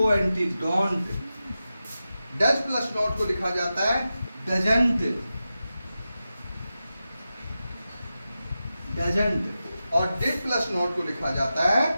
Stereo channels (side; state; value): both; inverted; correlation -0.92